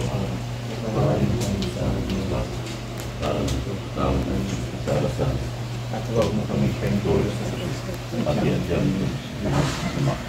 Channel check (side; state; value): both; identical; correlation 1.00